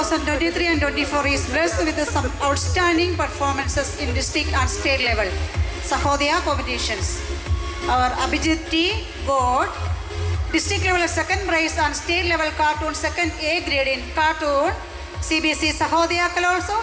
and 24 is blessed with some outstanding performances in district and state level Sahodaya competitions. Our Abhijit T got district level second prize and state level cartoon second A grade in cartoon CBSE Sahodaya Kalorso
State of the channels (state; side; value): identical; both; correlation 1.00